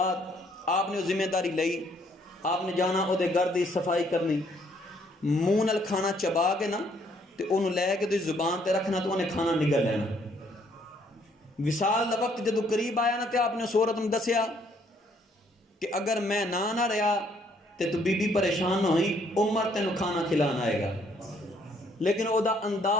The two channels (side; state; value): both; normal; correlation 0.66